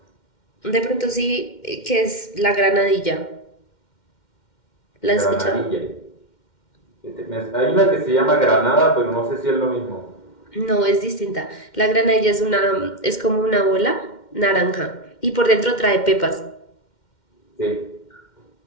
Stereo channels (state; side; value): late; right; 2.1 ms